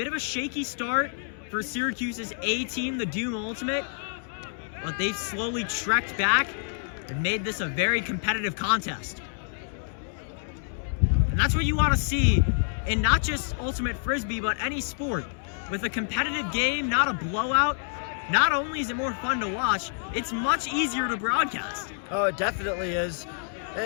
of a shaky start for Syracuse's A team, the Doom Ultimate, but they've slowly trekked back and made this a very competitive contest. And that's what you want to see in not just Ultimate Frisbee, but any sport. With a competitive game, not a blowout, not only is it more fun to watch, it's much easier to broadcast. Oh, it definitely is.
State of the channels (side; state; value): right; silent; digital silence